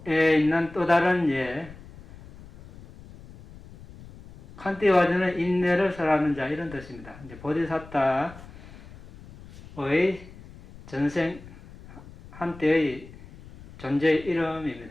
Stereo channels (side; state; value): left; noise; rumble, 19 dB below the sound